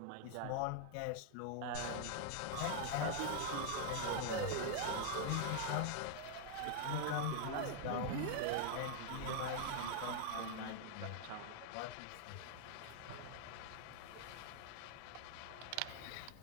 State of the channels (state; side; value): different; both; correlation 0.00